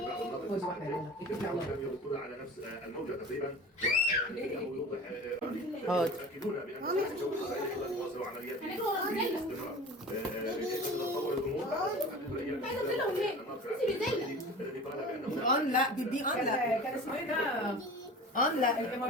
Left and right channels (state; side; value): normal; both; correlation 0.38